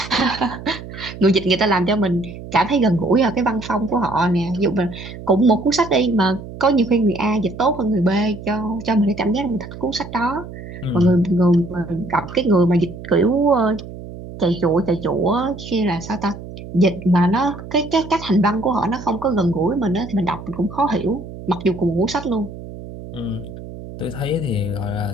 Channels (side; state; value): right; noise; hum, 13 dB below the sound